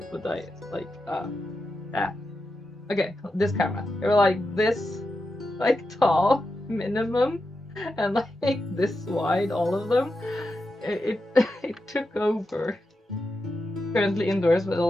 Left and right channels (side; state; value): both; normal; correlation 0.88